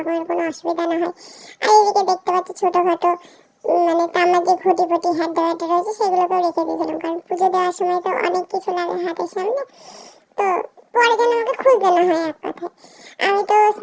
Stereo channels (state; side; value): identical; both; correlation 1.00